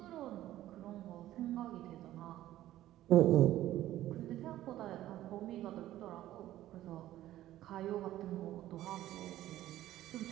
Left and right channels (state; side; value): quieter; left; 14.0 dB